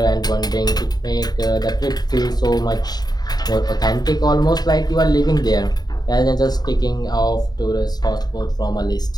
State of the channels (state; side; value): late; right; 0.20 ms